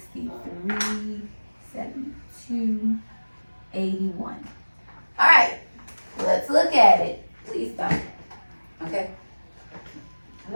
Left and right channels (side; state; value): both; inverted; correlation -1.00